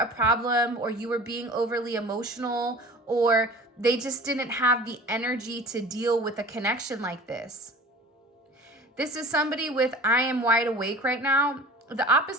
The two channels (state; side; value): normal; both; correlation 0.41